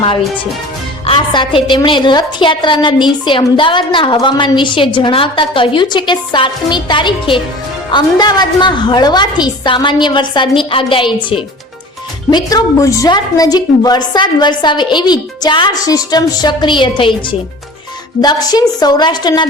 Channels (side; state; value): both; normal; correlation 0.41